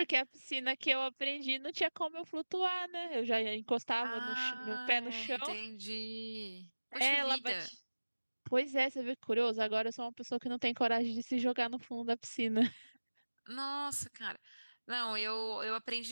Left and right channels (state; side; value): inverted; both; correlation -1.00